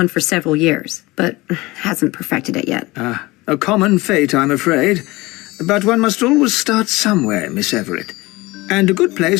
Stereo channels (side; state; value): right; quieter; 21.3 dB